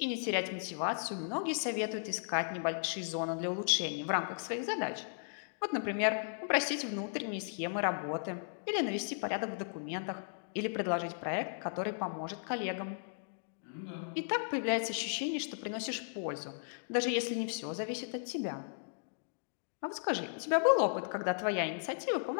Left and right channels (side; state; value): right; silent; digital silence